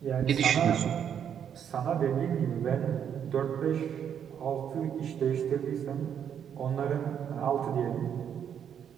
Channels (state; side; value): quieter; left; 8.6 dB